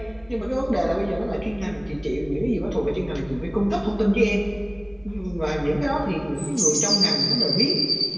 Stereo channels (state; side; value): noise; left; rumble, 26 dB below the sound